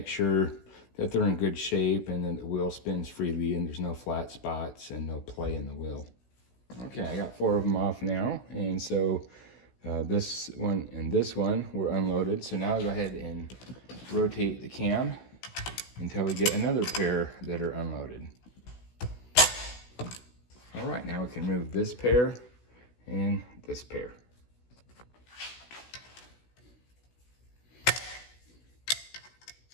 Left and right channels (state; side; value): late; right; 16 ms